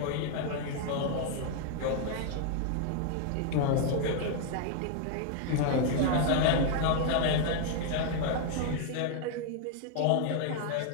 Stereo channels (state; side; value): different; both; correlation 0.00